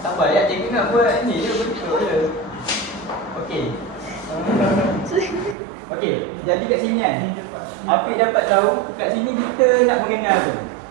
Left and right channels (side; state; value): left; drops out; at 5.6 s